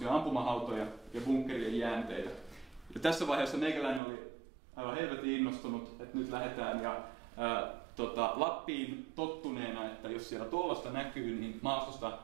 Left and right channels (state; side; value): drops out; left; at 4.0 s